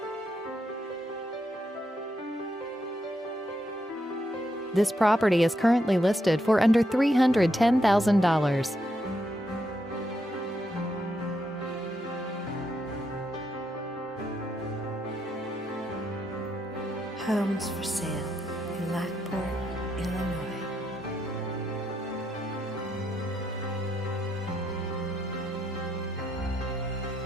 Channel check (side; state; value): both; normal; correlation 0.80